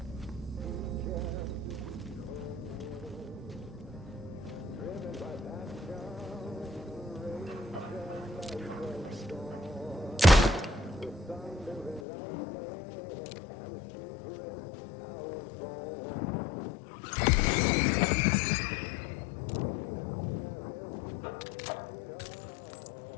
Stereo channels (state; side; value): drops out; right; at 12.1 s